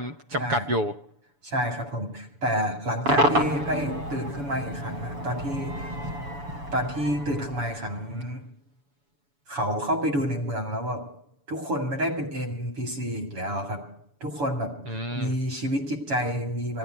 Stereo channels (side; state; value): left; late; 7.0 ms